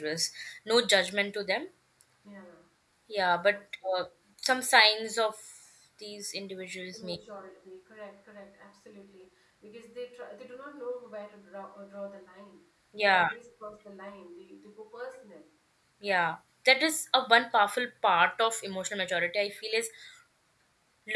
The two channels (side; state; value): both; identical; correlation 1.00